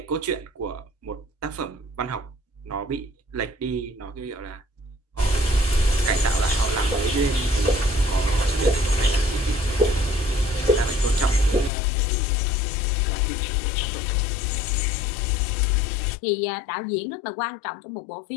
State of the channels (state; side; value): drops out; right; at 11.7 s